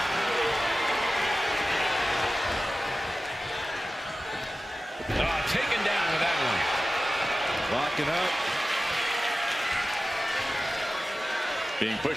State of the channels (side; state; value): both; normal; correlation 0.95